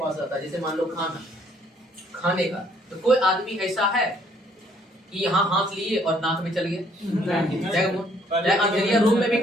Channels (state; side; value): normal; both; correlation 0.64